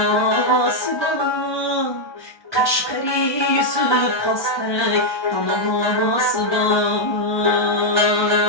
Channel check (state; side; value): late; right; 1.2 ms